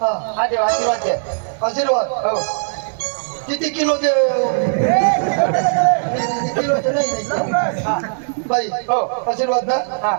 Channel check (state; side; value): silent; left; 67 dB below the other